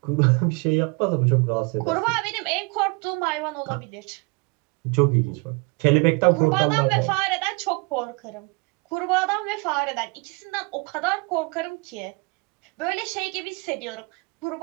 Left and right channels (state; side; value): quieter; left; 29.5 dB